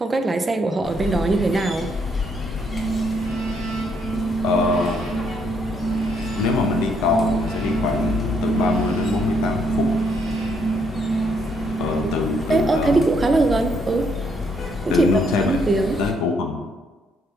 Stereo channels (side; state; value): both; normal; correlation 0.72